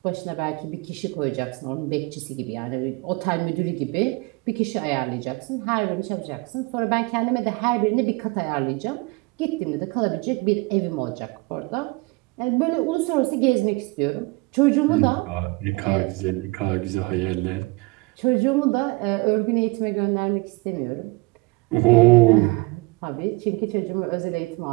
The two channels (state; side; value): quieter; left; 24.7 dB